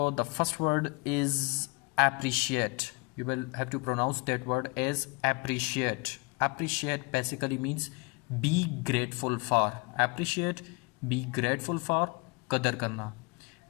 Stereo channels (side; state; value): right; quieter; 29.0 dB